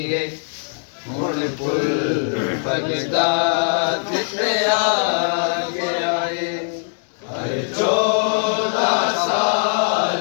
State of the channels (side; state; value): right; silent; 65 dB below the other